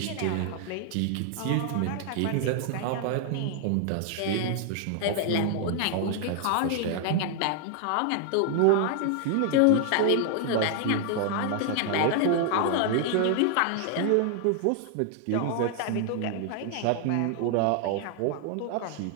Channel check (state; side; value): different; both; correlation 0.00